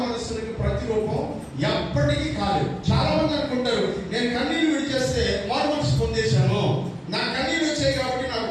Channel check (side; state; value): both; identical; correlation 1.00